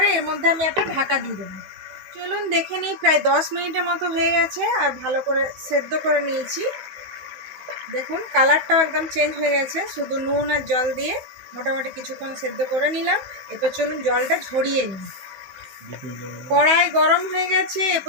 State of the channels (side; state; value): left; late; 16 ms